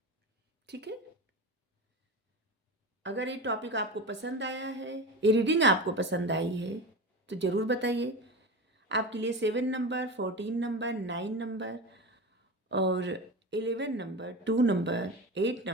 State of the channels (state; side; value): normal; both; correlation 0.26